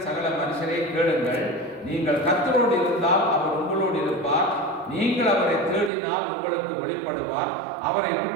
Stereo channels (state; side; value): drops out; left; at 5.9 s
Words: சகல மனுஷரை கேளுங்கள், நீங்கள் கர்த்தரோடு இருந்தால் அவர் உங்களோடு இருப்பார், நீங்கள் அவரை தேடினால் உங்களுக்கு வெளிப்படுவார், அவரை